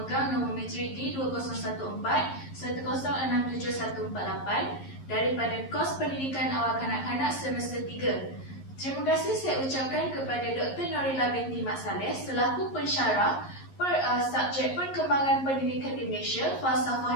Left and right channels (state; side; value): late; right; 11 ms